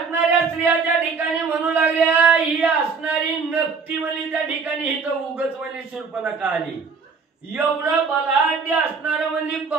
स्त्रिया त्या ठिकाणी म्हणू लागल्या, ही असणारी नकटी म्हणजे त्या ठिकाणी इथं उगच म्हणजे शूर्पणखा आली. एवढं बलाढ्य असणार म्हणजे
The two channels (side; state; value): left; quieter; 5.2 dB